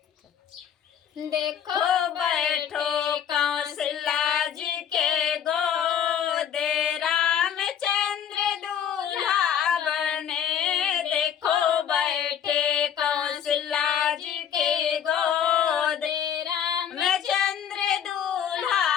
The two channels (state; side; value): quieter; right; 8.8 dB